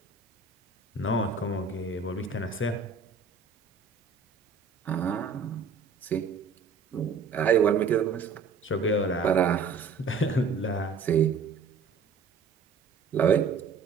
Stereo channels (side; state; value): left; quieter; 5.0 dB